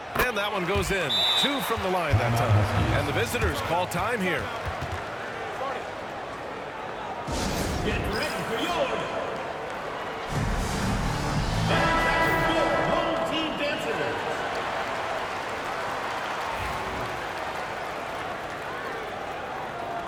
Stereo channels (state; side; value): identical; both; correlation 1.00